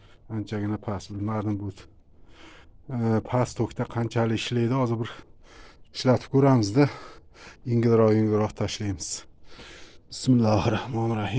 Anchagina past, bilmadim bu past tokda qanchalik ishlaydi. Hozir bir ishlatib ko'ramizda. Yengilroq tashlaymiz.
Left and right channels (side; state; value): both; identical; correlation 1.00